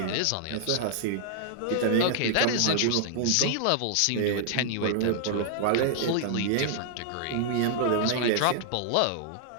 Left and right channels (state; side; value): different; both; correlation -0.01